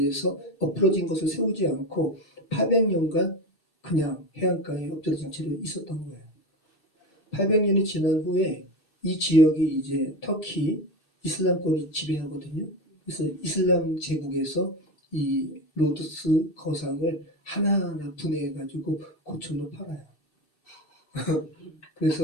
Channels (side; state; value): right; late; 2.6 ms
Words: 엎어진 것을 세우지 않고 800년간 그냥 해안가에 엎드러진 채로 있었던 거예요. 800년이 지난 후에 이 지역이 이제 터키 이슬람권이 지배하거든요. 그래서 이슬람 제국에서 이 로도스 거상을 하나하나 분해해가지고 고철로 팔아요.